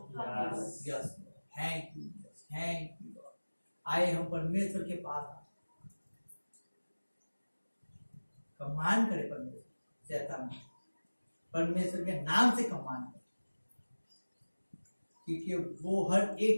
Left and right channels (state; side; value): inverted; both; correlation -1.00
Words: Yes. Yes, thank you, thank you. आए हम परमेश्वर के पास, कमान करे परमेश्वर शैतान, परमेश्वर के नाम से कमान करे, क्योंकि वो हर